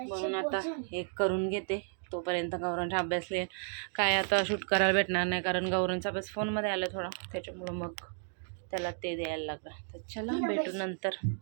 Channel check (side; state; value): left; silent; 56 dB below the other